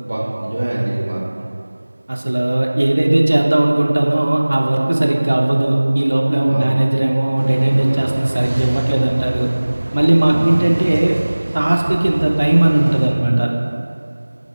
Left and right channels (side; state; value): both; inverted; correlation -1.00